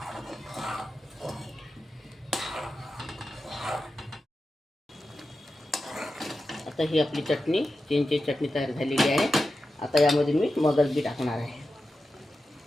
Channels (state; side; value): normal; both; correlation 0.92